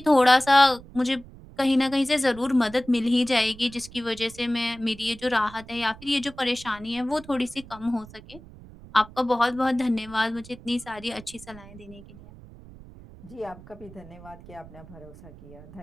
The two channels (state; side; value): noise; right; rumble, 19 dB below the sound